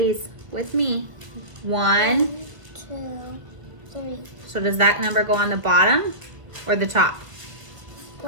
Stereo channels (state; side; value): late; left; 1.3 ms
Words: with me. 1. 2, 3. So does that number go on the bottom or the top?